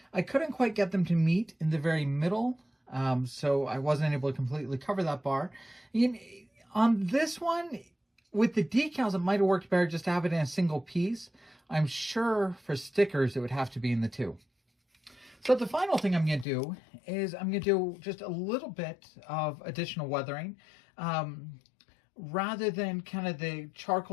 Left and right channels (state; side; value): drops out; right; at 16.4 s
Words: I couldn't quite get them to meet in the very middle, so I wasn't able to completely cover that bar. On this one, with the decals, it might have worked better just to have it in a single piece. I'm sure for stickers, it would have to be in the 2. So the final thing I'm going to do is I'm going to do just a little bit of additional weathering. rather than kind of the